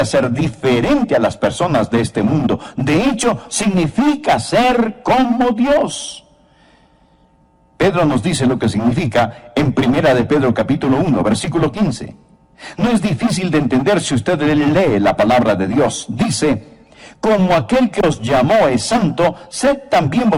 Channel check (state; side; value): identical; both; correlation 1.00